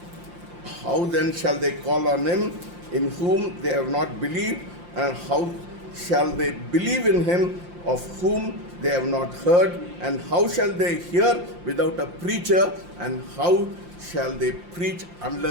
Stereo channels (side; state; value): left; late; 5.7 ms